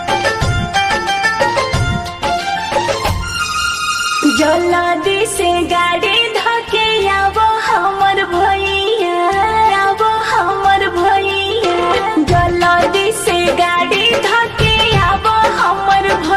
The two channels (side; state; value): both; identical; correlation 1.00